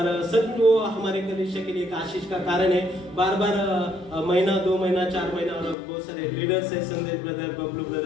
सच में वो हमारे कलीसिया के लिए एक आशीष का कारण है। बार बार महीना 2 महीना 4 महीना, और बहुत सारे लीडर्स है, संदेश brother, Bablu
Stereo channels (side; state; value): right; drops out; at 5.8 s